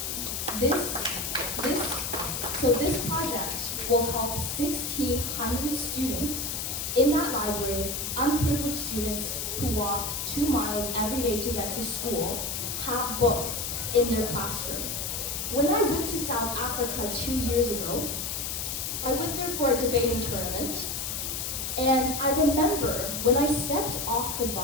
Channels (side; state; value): left; noise; hiss, 3 dB below the sound